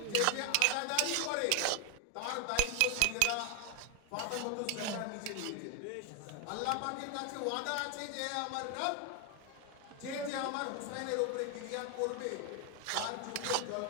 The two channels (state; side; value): different; both; correlation 0.01